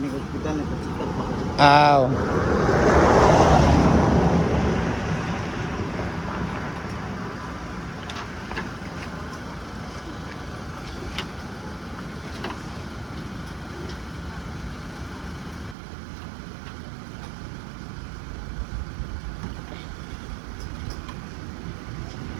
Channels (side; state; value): left; drops out; at 15.8 s